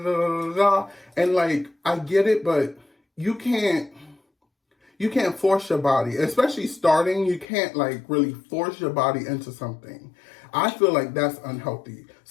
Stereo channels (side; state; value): right; drops out; at 7.5 s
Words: blah. And like, I get it, but you can't force your body, especially starting. You can't like really force your body into something. I feel like that's unhealthy.